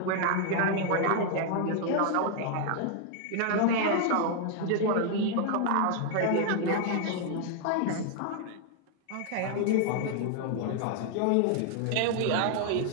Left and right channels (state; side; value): different; both; correlation 0.00